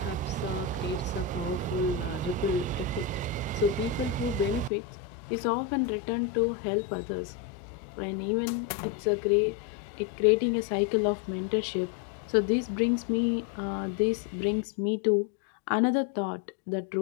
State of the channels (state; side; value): drops out; right; at 4.7 s